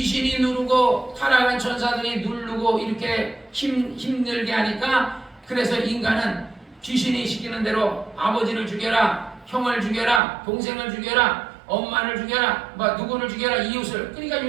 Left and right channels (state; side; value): drops out; left; at 10.2 s